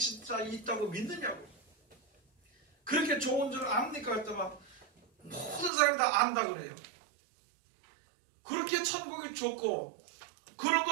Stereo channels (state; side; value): drops out; left; at 5.7 s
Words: 있다고 믿느냐고. 그렇게 좋은 줄 압니까? 했더니 모든 사람이 다 안다 그래요. 그렇게 천국이 좋고 그런